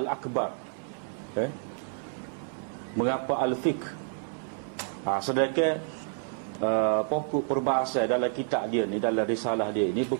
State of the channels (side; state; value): left; silent; 58 dB below the other